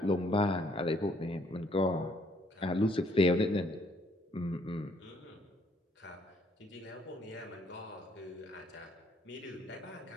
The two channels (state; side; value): normal; both; correlation 0.66